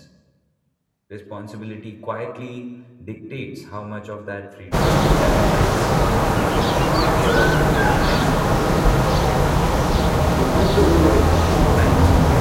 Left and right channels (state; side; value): identical; both; correlation 1.00